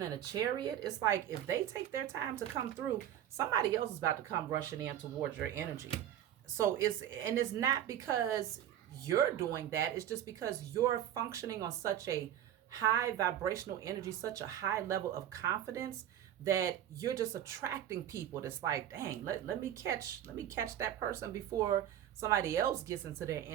and the Chariot, it's like if they take their time to come through, somebody else is about to come rushing in towards your energy. So it's not because you're doing that. It's just because you're functioning on such a high vibrational energy, such a high level of confidence, that you're just attracting people that's like, dang, let me catch that person before somebody else gets into their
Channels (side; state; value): left; quieter; 11.1 dB